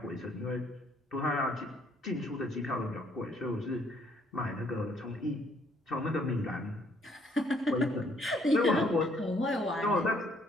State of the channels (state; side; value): normal; both; correlation 0.65